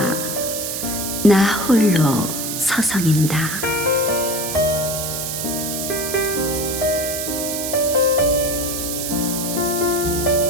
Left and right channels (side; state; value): right; noise; hiss, 4 dB below the sound